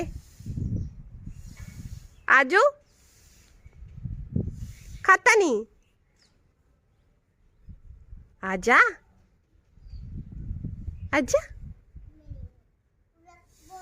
आजो। खाता नहीं, आजा आजा।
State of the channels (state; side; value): identical; both; correlation 1.00